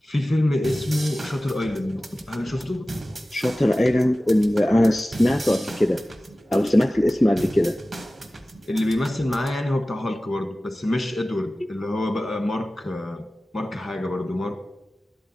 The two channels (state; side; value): normal; both; correlation 0.96